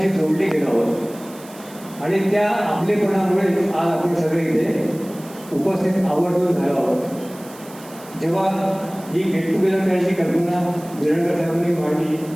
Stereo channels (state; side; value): noise; right; hiss, 21 dB below the sound